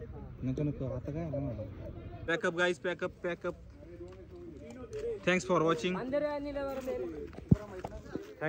नको आता काय. Pack up guys pack up. Thanks for watching.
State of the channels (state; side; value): identical; both; correlation 1.00